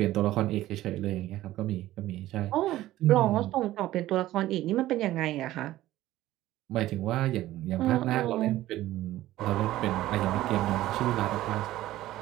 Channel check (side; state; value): left; quieter; 15.2 dB